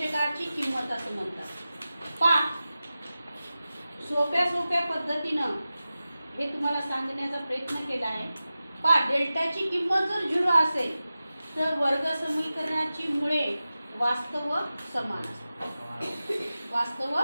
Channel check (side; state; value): both; inverted; correlation -0.95